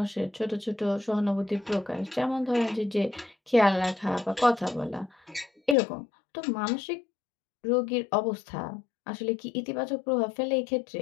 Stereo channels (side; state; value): right; drops out; at 5.8 s